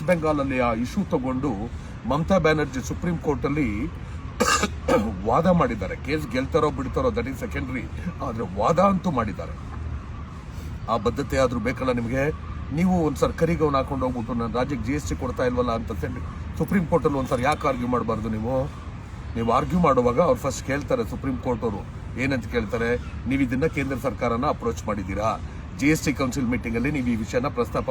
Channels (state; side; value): identical; both; correlation 1.00